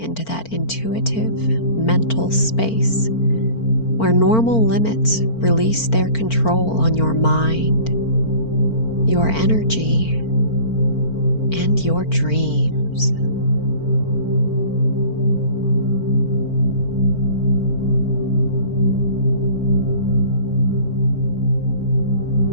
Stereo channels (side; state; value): right; late; 4.4 ms